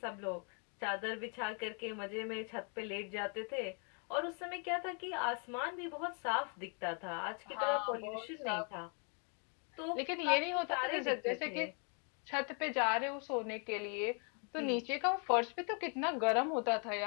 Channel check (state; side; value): quieter; right; 39.4 dB